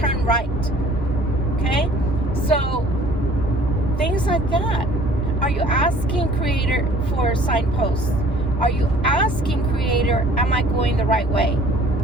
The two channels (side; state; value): both; normal; correlation 0.53